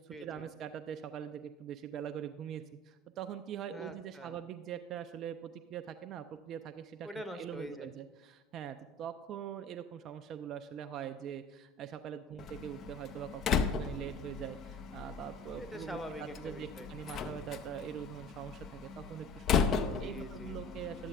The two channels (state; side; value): normal; both; correlation 0.41